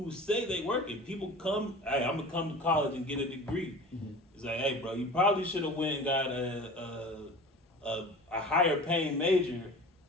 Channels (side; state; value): both; normal; correlation 0.39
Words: say they work it. People come, hey, I'm gonna come to college and get a degree. Mm-hmm. It's like, hey, bro, you probably should have went and got a higher paying major